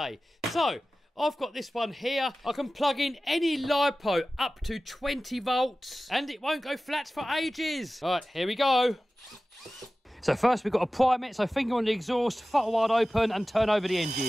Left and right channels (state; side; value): normal; both; correlation 0.96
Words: So I've got this one here. I can plug in any LiPo up to 20 volts and it won't go flat for ages. All right, here we go. So first we've got to prime it. So finger on the exhaust, throttle wide open and turn over the